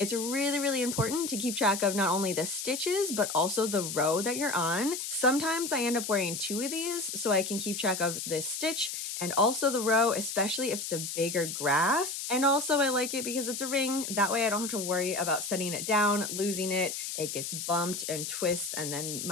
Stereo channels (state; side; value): noise; left; hiss, 5 dB below the sound